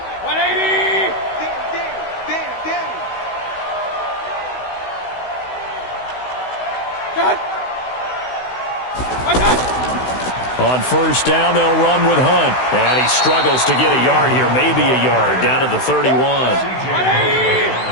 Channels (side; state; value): right; late; 16 ms